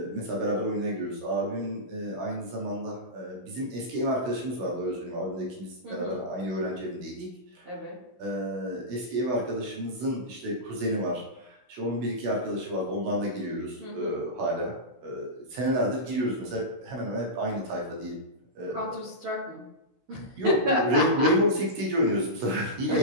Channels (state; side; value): late; left; 16 ms